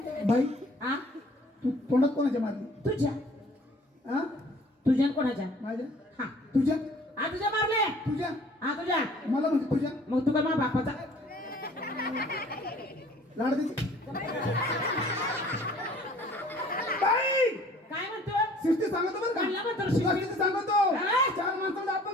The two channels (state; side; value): normal; both; correlation 0.53